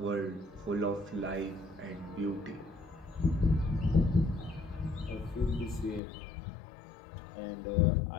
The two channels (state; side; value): drops out; right; at 6.0 s